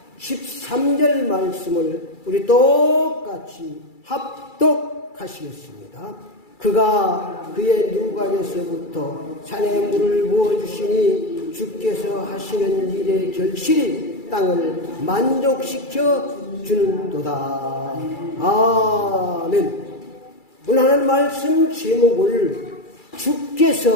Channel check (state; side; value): late; right; 2.3 ms